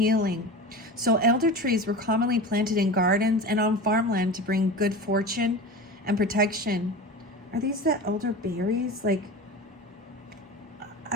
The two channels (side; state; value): both; normal; correlation 0.30